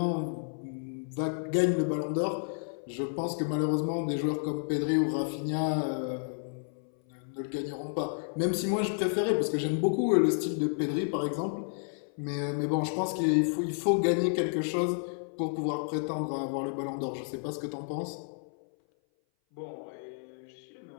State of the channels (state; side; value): silent; right; 57 dB below the other